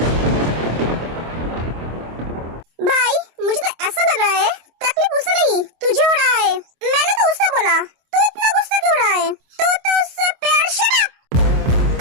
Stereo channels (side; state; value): left; late; 25 ms